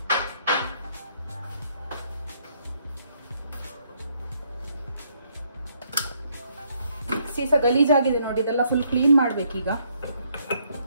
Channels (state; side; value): inverted; both; correlation -0.70